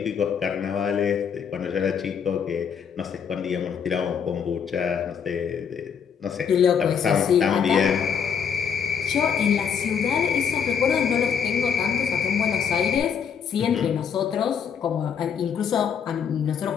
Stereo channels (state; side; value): quieter; right; 7.2 dB